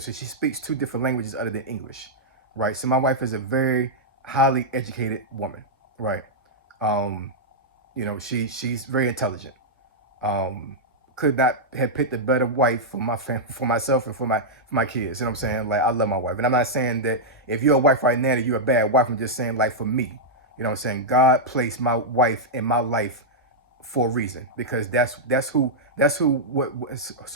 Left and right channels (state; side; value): normal; both; correlation -0.07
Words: So she speaks two different languages other than English, right? So my wife is a very highly educated woman, right? Um, she's very intelligent. Could not have picked a better wife for my family, for myself, and for my kids. You know what I'm saying? Like, I love my wife, and I'm not saying that if you're a wife right now that you're a bad wife. I'm just saying, like, for me, you know what I'm saying? God placed my wife in my life for a reason, because that's who what's